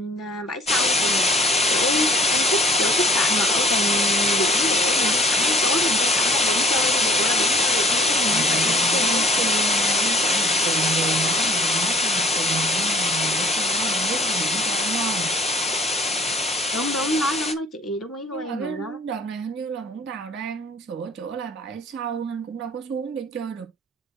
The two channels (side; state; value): both; normal; correlation 0.52